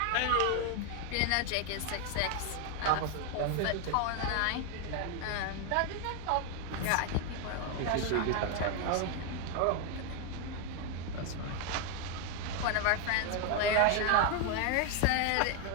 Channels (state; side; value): different; both; correlation 0.01